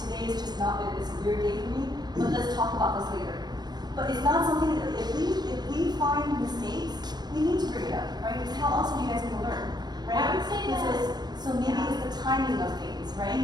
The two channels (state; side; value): late; left; 0.20 ms